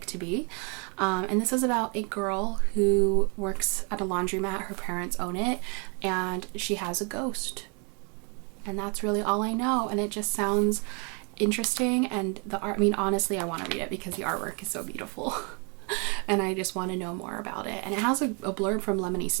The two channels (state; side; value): quieter; left; 35.0 dB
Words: to be. And this is about a girl who works at a laundromat. Her parents own it, and she has a ghost. And that's really all I know. And it just sounds interesting. And the art, I mean, honestly, I want to read it because the artwork is so beautiful. And I just want to know more about it. And it has a blurb from Lemony